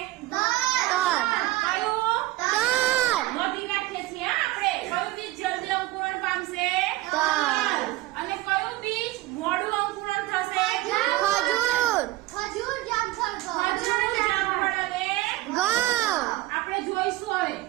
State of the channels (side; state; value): left; quieter; 17.3 dB